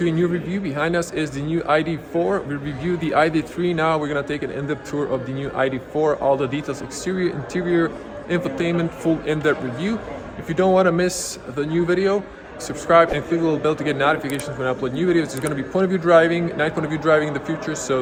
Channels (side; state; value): both; identical; correlation 1.00